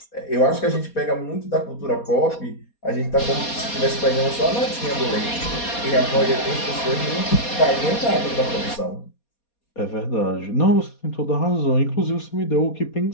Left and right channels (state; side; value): late; right; 4.2 ms